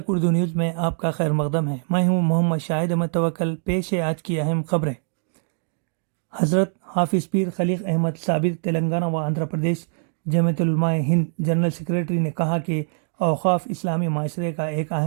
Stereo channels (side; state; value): left; silent; digital silence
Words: اردو نیوز میں آپ کا خیر مقدم ہے۔ میں ہوں محمد شاہد احمد توکل۔ پیش ہے آج کی اہم خبریں۔ حضرت حافظ پیر خلیق احمد صابر تلنگانہ و آندھرا پردیش جمعیت العلماء ہند جنرل سیکریٹری نے کہا کہ اوقاف اسلامی معاشرے کا ایک